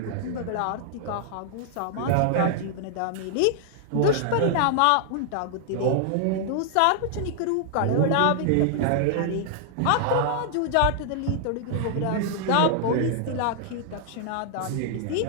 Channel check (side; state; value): both; different; correlation -0.01